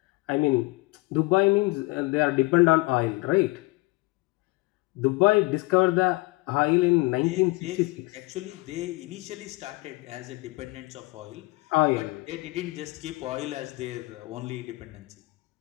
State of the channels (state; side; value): quieter; right; 23.7 dB